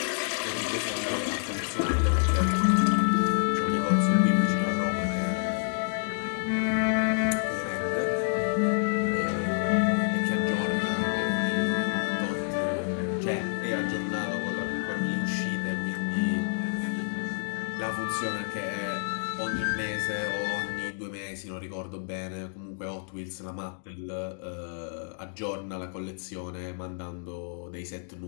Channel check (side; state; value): right; silent; digital silence